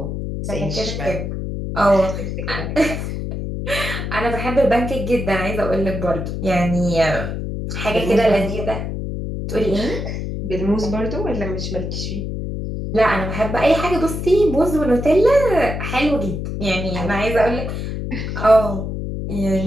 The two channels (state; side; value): noise; left; hum, 4 dB below the sound